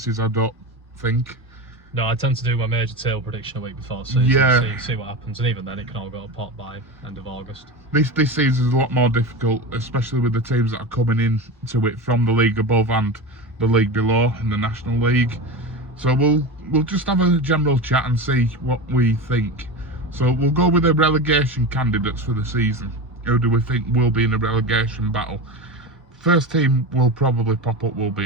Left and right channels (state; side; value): normal; both; correlation 0.24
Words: I don't think. No, I tend to do my major tail prediction a week before season. Yeah. See what happens. And even then, it can all go to pot by end of August. This season is a lot more difficult, especially with the teams that are coming in to it from the league above and the league below in the National League. So we'll just have a general chat and see what we think. So we'll go with the relegation candidates for the season. Who do we think will be in a relegation battle? First team will probably pop up will be